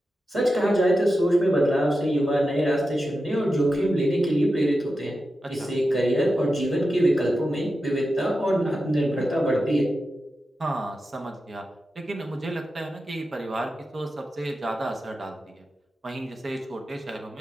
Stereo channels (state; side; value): normal; both; correlation 0.91